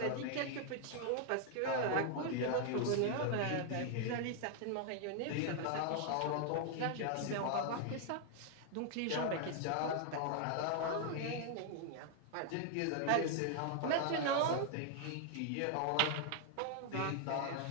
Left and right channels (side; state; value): both; different; correlation 0.00